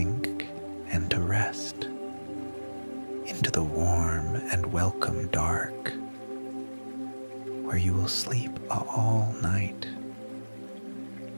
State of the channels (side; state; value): both; inverted; correlation -1.00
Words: and to rest into the warm and welcome dark, where you will sleep all night.